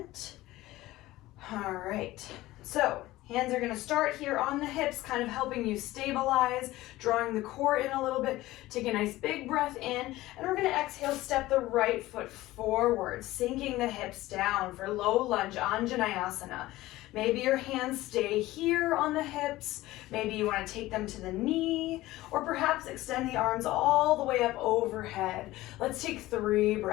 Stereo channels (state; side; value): quieter; right; 17.3 dB